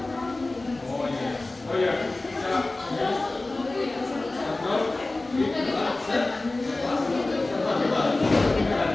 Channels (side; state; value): right; quieter; 3.0 dB